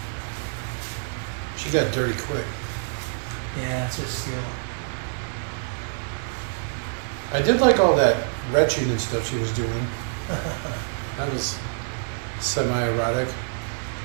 She got dirty quick. Yeah, it's just steel. I did like all that retching and stuff she was doing. That was semi-erotic.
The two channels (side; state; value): left; silent; digital silence